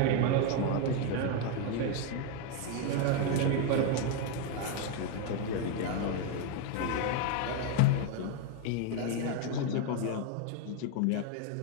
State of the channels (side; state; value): both; different; correlation 0.01